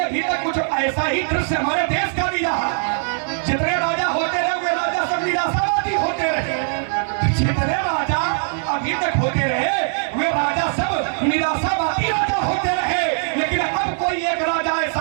तक कुछ ऐसा ही दृश्य हमारे देश का भी रहा। जितने राजा होते रहे वे राजा सब निराशावादी होते रहे। जितने राजा अभी तक होते रहे वे राजा सब निराशावादी राजा होते रहे। लेकिन अब कोई एक राजा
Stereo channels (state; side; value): silent; left; 65 dB below the other